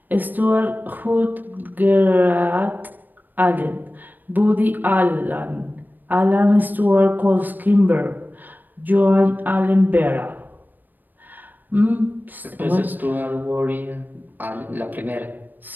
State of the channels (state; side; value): late; left; 0.089 ms